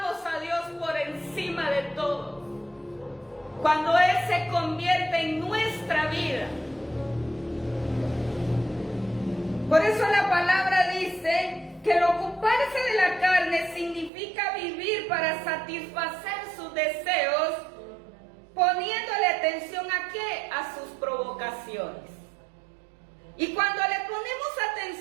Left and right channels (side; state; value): left; drops out; at 14.1 s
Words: a Dios por encima de todo. Cuando Él se convierte en nuestra vida. Por eso la palabra dice que el ocuparse de la carne significa vivir para satisfacer sus deseos, poniéndole atención ¿a qué? A sus provocaciones. Y cuando le ponemos